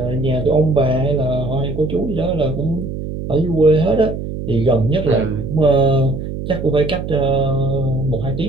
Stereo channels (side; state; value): right; noise; hum, 7 dB below the sound